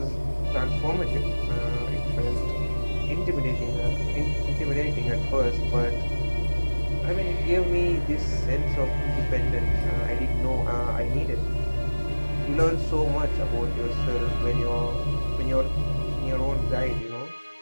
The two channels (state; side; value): inverted; both; correlation -1.00